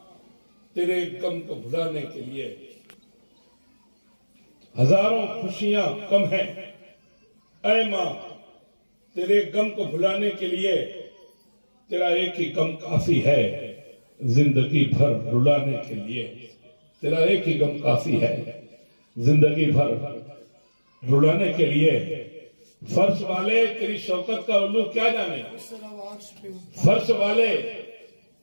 تیرے غم کو بھلانے کے لیے. ہزاروں خوشیاں کم ہیں اے ماں تیرے غم کو بھلانے کے لیے. تیرا ایک ہی غم کافی ہے زندگی بھر رلانے کے لیے. تیرا ایک ہی غم کافی ہے زندگی بھر رلانے کے لیے. فرش والے تیری شوکت کا علو کیا جانے, فرش والے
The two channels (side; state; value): both; inverted; correlation -1.00